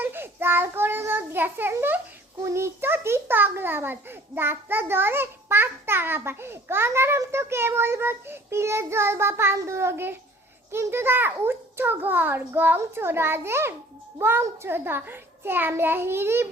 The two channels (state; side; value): normal; both; correlation 0.51